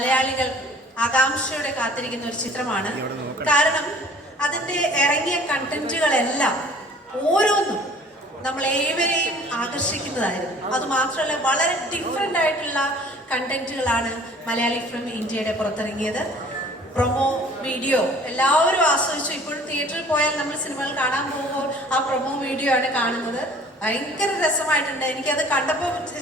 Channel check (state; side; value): normal; both; correlation 0.50